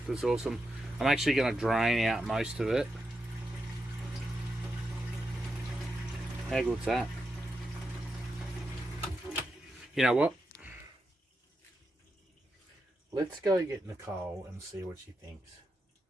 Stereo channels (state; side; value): normal; both; correlation 0.87